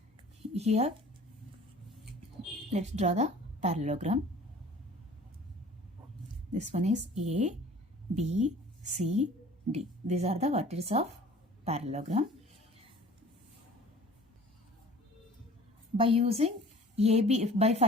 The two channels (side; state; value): both; normal; correlation 0.47